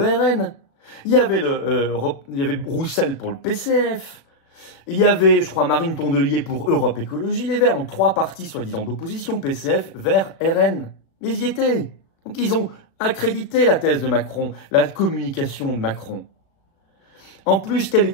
il y avait Roussel pour le PCF, il y avait, je crois, Marine Tondelier pour Europe Écologie Les Verts, donc 3 partis soi-disant d'opposition, PCF, Verts, RN. Mais ils y étaient. Donc ils ont accrédité la thèse de Macron, la communication de Macron. En plus, quel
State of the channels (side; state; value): right; late; 36 ms